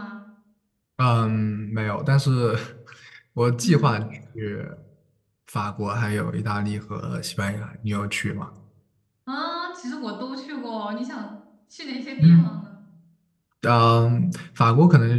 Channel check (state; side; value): identical; both; correlation 1.00